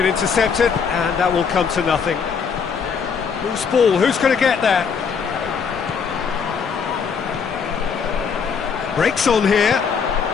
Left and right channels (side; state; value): right; quieter; 6.2 dB